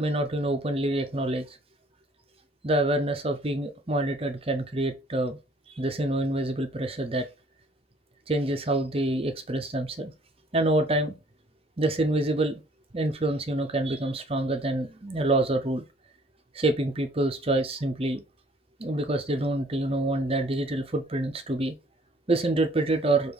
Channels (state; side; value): normal; both; correlation 0.58